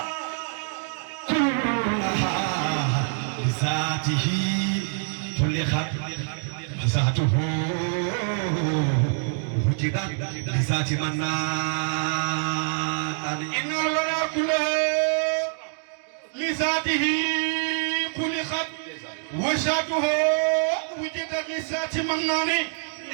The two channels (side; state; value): left; silent; digital silence